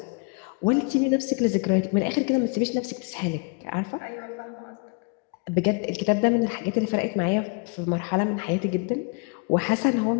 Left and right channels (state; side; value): quieter; right; 34.1 dB